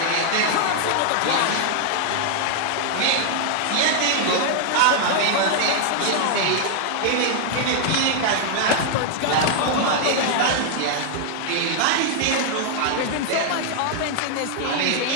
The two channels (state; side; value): different; both; correlation 0.00